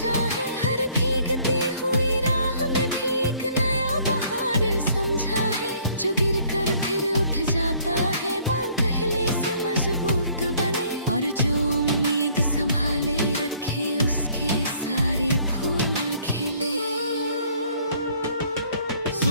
है, हर भीगती हुई राह में भी एक नया बहार समझा है। जो गिर कर फिर उठ जाता है, बाल पहले से मजबूत बने, और जो उम्मीद संभाले रखे उसके सारे फूल खिले।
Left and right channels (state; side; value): inverted; both; correlation -0.60